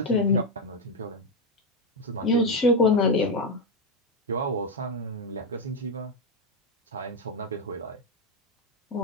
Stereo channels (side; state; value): both; normal; correlation 0.05